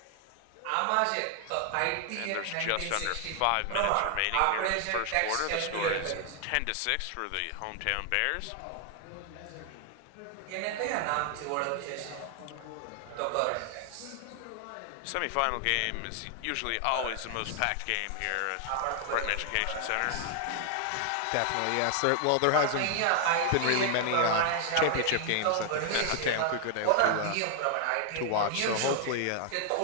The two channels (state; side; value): different; both; correlation 0.00